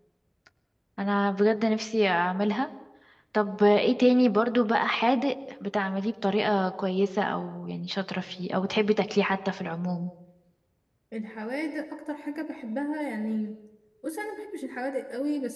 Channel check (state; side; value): identical; both; correlation 1.00